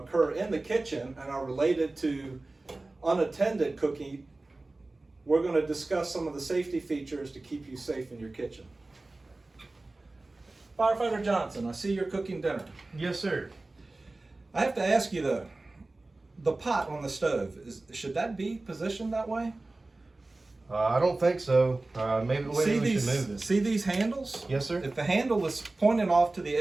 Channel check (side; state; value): left; quieter; 3.1 dB